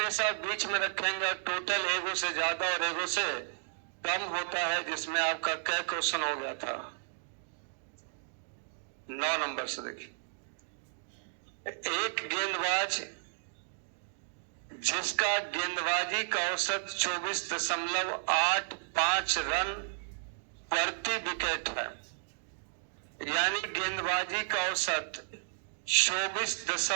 बीच में रखेंगे और टोटल एगो से ज्यादा और एगो से कम होता है, जिसमें आपका क्या क्वेश्चन हो गया था 9 नंबर से। देखिए, एक गेंदबाज जिसका गेंदबाजी का औसत 24.85 रन प्रति विकेट है, यानी गेंदबाजी का औसत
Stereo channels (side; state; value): left; silent; digital silence